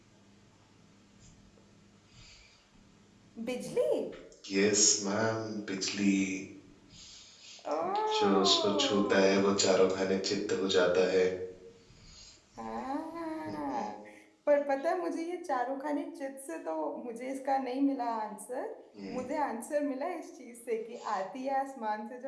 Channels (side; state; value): both; identical; correlation 1.00